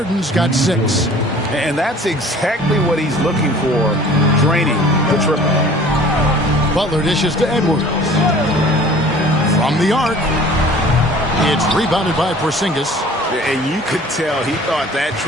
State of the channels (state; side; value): normal; both; correlation 0.48